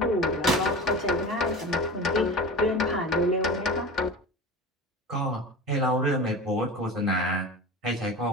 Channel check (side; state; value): both; normal; correlation 0.31